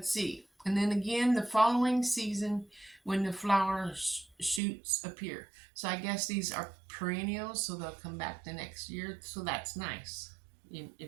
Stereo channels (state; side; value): drops out; left; at 4.6 s